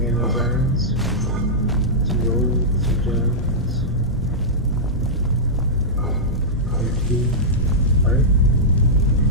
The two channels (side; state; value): both; normal; correlation -0.11